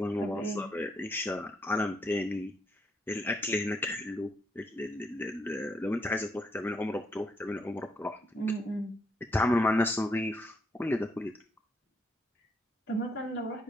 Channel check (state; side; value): normal; both; correlation 0.75